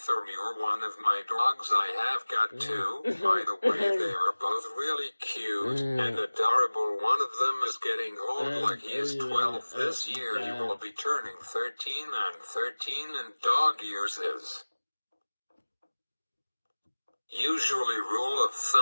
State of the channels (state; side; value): inverted; both; correlation -1.00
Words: me or one of my dogs. I have got 2, by the way. They are both really cute and adorable. One of them is getting old, like he is 12 this year. He will be turning 13, and dog years is usually rule of